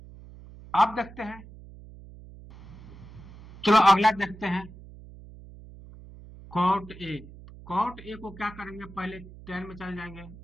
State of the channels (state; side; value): noise; right; hum, 18 dB below the sound